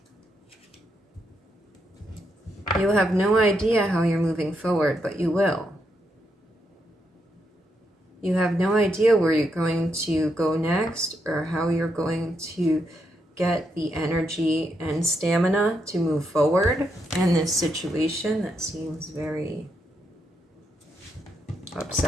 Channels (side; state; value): both; normal; correlation 0.80